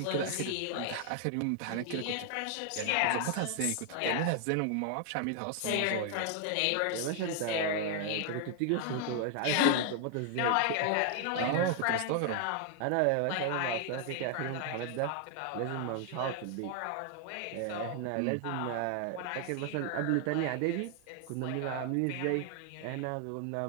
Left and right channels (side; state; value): both; different; correlation 0.00